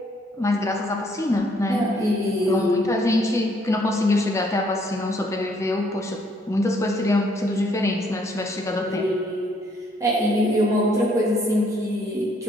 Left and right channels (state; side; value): normal; both; correlation 0.67